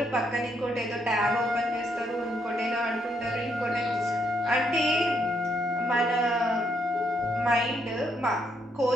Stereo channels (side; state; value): both; normal; correlation 0.75